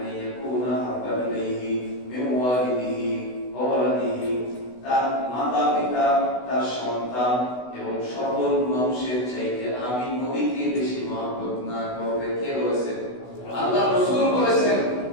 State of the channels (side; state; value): right; late; 16 ms